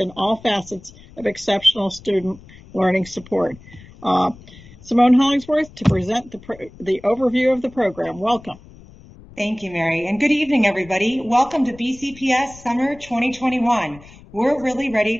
all facets of exceptional student learning support. Simone Hollingsworth to present the overview of the program. Welcome. Thank you, Mary, and good evening, everybody. Welcome to BCPS Summer 2021. We're really ready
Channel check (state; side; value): noise; left; rumble, 21 dB below the sound